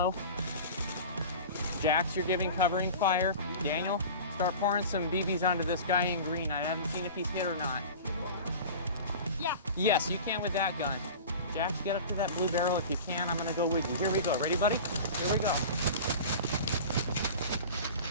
Jax, you're giving covering fire. Daniel, start pouring some BBs onto this guy in green. I haven't seen if he's hit or not. Yeah. Yes, you can with that gun. Jax, get up to that blue barrel if you can. I'm gonna go with you. Here we go. Ready, buddy? Here we go.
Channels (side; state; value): both; inverted; correlation -0.35